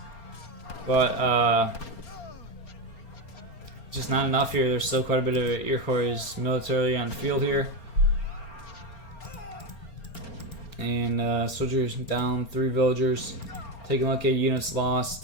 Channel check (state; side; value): late; right; 4.3 ms